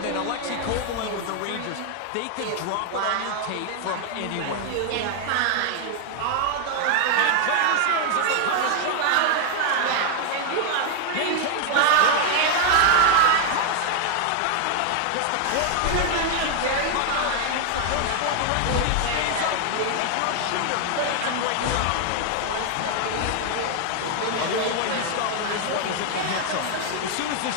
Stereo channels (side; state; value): both; different; correlation 0.00